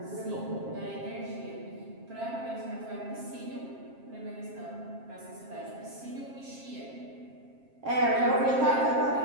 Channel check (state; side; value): late; left; 7.5 ms